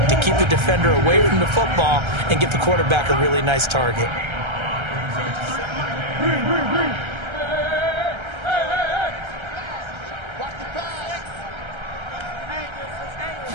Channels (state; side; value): late; left; 1.3 ms